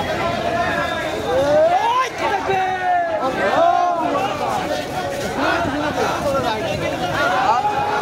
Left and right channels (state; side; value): identical; both; correlation 1.00